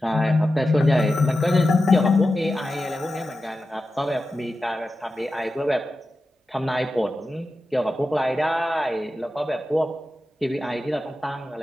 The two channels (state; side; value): normal; both; correlation 0.92